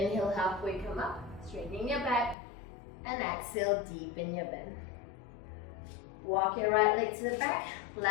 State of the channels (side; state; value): right; drops out; at 2.4 s